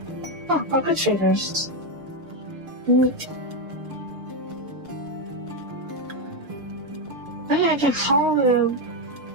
Oh, good traders. Neat. Oh yeah, I can haul the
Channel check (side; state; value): left; late; 6.6 ms